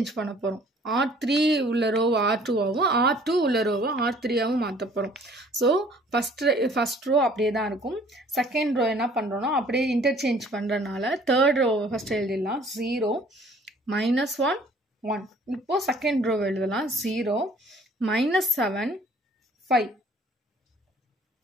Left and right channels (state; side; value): normal; both; correlation 0.55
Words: பண்ண போகிறோம். R3 உள்ள ரோவை R2ஆகவும் R2 உள்ள ரோவை R3ஆகவும் மாற்ற போகிறோம். ஸோ ஃபஸ்ட் ரோ அப்படியே தான் இருக்கும். செகண்ட் ரோ என்ன பண்ணுறோன்னா அப்படியே இன்டர்சேஞ்ச் பண்ணுறதுனால தேர்ட் ரோவை ஃபஸ்ட்டு எழுதிடலாம். 0 -1 1. இப்போது செகண்ட் ரோ எழுதலாம். 0 -7 5.